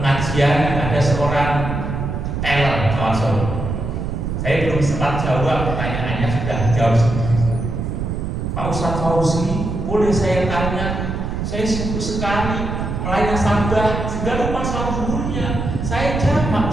ada seorang teller kawan Solo. Saya belum sempat jawab pertanyaannya, sudah jawab sendiri. Pak Ustadz Fauzi, boleh saya tanya? Saya sibuk sekali melayani nasabah sehingga lupa sholat zuhurnya. Saya jawab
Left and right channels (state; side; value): noise; right; rumble, 3 dB below the sound